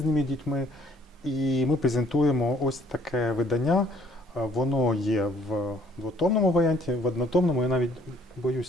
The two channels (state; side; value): normal; both; correlation 0.61